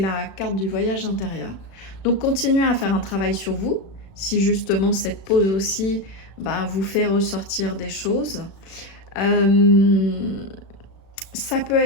carte du voyage intérieur. Donc, continuez à faire un travail sur vous, si justement cette pause aussi vous fait ressortir des choses. Ça peut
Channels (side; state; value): right; late; 36 ms